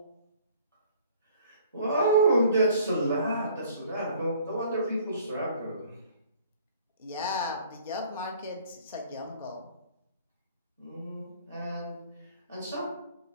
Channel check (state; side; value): inverted; both; correlation -0.54